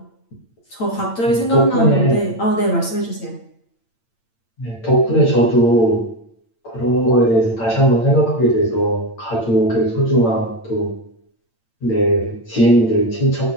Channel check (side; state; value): right; late; 8.8 ms